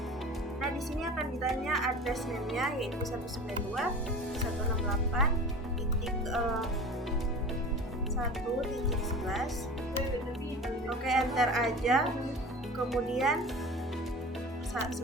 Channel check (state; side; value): normal; both; correlation 0.37